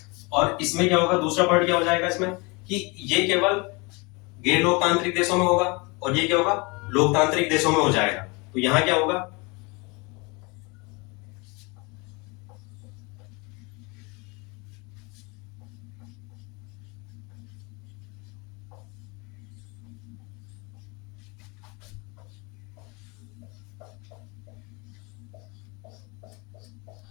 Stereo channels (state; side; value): quieter; right; 28.2 dB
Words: और इसमें क्या होगा, दूसरा पॉइंट क्या हो जाएगा इसमें, कि ये केवल गैर लोकतांत्रिक देशों में होगा, और ये क्या होगा, लोकतांत्रिक देशों में हो जाएगा। तो यहाँ क्या होगा,